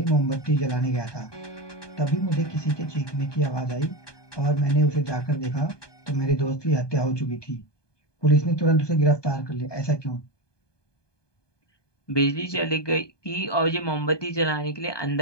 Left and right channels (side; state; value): right; late; 1.2 ms